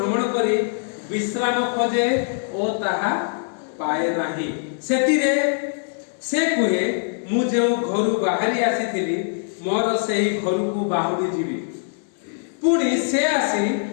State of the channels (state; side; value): silent; right; 64 dB below the other